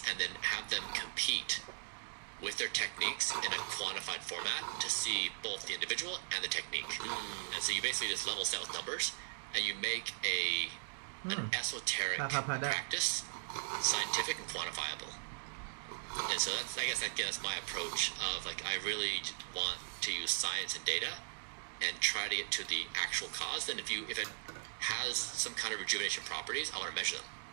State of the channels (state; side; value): silent; left; digital silence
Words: and then have them compete with their techniques in a quantified format to see both the individual and the technique. And so you basically just level set with numbers and you make an esoteric practice scientific and quantifiable. And so that's, I guess, again, that's my approach of like, I really want to use science and data and try to get to the actual cause. Then if it has some kind of rejuvenation properties, I want to measure them.